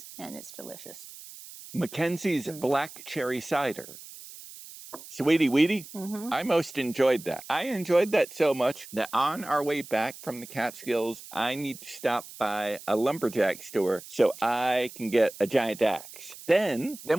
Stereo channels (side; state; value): right; noise; hiss, 16 dB below the sound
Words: and it's delicious. McKenzie's black cherry cider. Sweetie Weetie, I most enjoyed that. I enjoyed that so much that on our way back from the Catskills, I need to stop by a lumberjack store so I can get a giant axe. Then